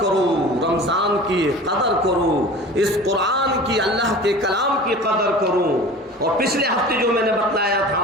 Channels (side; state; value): both; normal; correlation 0.39